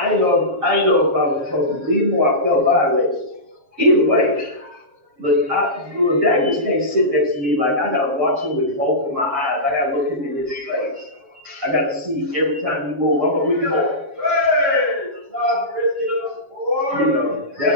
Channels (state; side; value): late; left; 7.3 ms